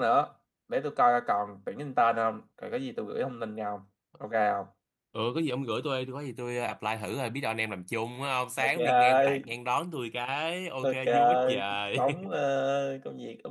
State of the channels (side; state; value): both; identical; correlation 1.00